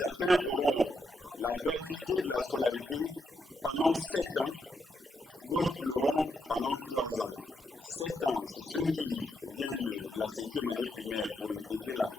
auront la gratuité de la scolarité pendant 7 ans, d'autres l'auront pendant 3 ans. 7 ans, c'est ceux qui viennent de la 5e année primaire pour intégrer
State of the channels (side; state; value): both; normal; correlation 0.80